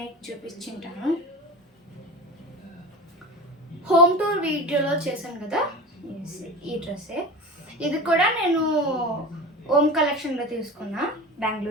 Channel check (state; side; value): normal; both; correlation 0.31